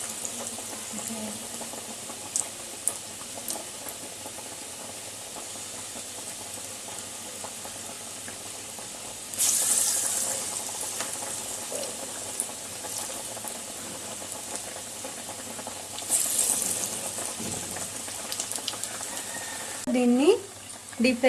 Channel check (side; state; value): both; identical; correlation 1.00